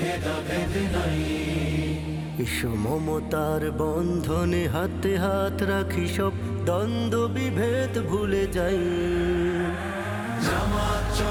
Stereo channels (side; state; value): both; identical; correlation 1.00